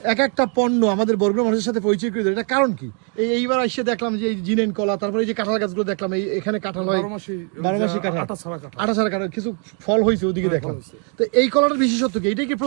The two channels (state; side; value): quieter; left; 40.0 dB